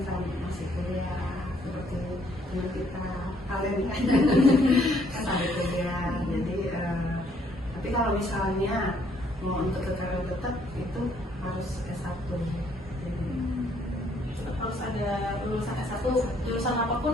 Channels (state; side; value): normal; both; correlation 0.66